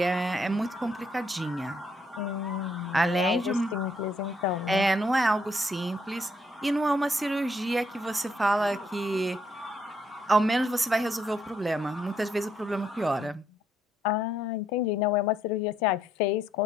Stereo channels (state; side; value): normal; both; correlation 0.72